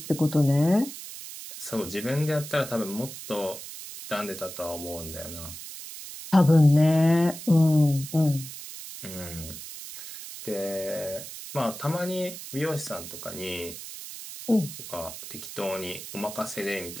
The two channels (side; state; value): right; noise; hiss, 11 dB below the sound